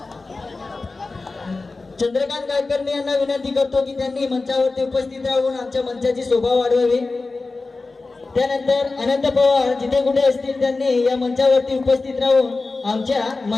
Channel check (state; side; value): quieter; right; 3.6 dB